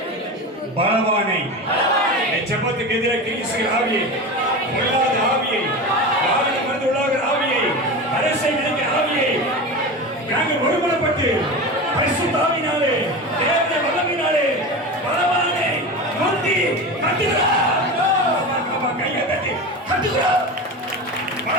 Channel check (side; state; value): both; normal; correlation 0.26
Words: பலவானை ஜெபத்துக்கு எதிராக கிரிசுகிற ஆவியை, பொல்லாத ஆவியை, வாகனம் வந்து உள்ளாகிற ஆவியை, அரசை விதிக்கிற ஆவியை நாங்கள் ஒருமனப்பட்டு பரிசுத்த ஆவியினாலே, தேவனுடைய வல்லமையினாலே பலவானை முந்தி கட்டுகிறார். கையை தட்டி கட்டுகிறார்.